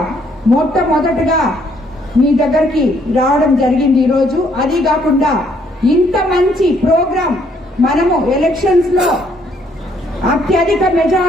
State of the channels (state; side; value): normal; both; correlation 0.68